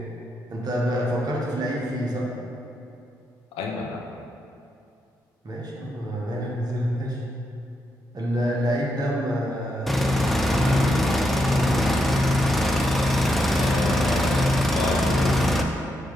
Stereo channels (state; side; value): normal; both; correlation 0.82